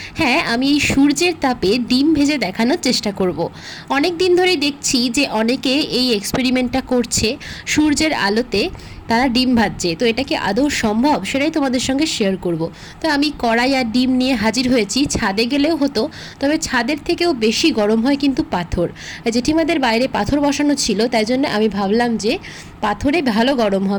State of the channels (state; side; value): identical; both; correlation 1.00